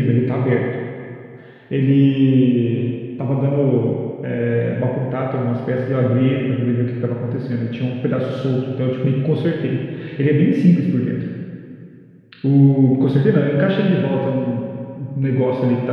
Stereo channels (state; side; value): identical; both; correlation 1.00